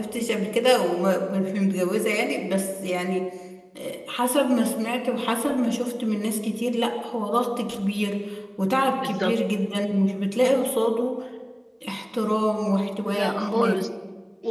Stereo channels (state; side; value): identical; both; correlation 1.00